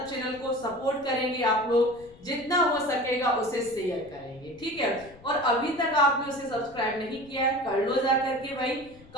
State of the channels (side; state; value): left; noise; rumble, 23 dB below the sound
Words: चैनल को सपोर्ट करेंगे आप लोग, जितना हो सकेगा उसे शेयर करेंगे। ठीक है। और अभी तक आपने उसे सब्सक्राइब नहीं किया है, कर लो जा करके भाई,